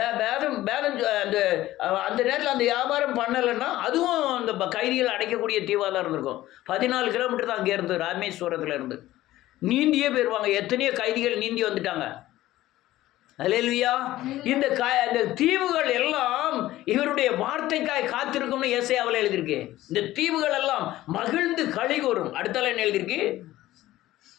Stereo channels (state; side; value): quieter; right; 15.6 dB